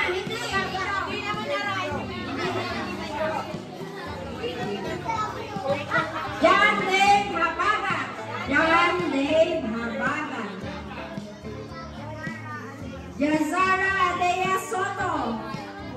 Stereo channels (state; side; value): identical; both; correlation 1.00